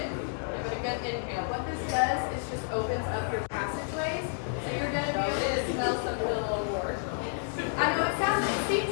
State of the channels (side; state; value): right; silent; digital silence